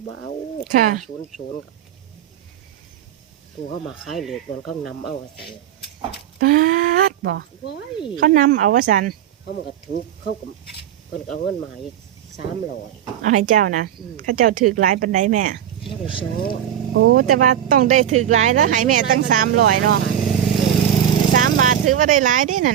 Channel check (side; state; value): left; quieter; 10.4 dB